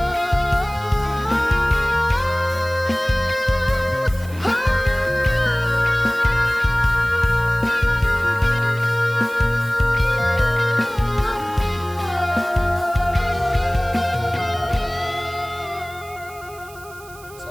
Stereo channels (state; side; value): noise; right; hiss, 21 dB below the sound